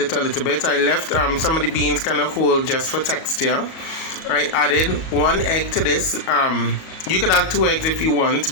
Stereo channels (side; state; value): right; late; 38 ms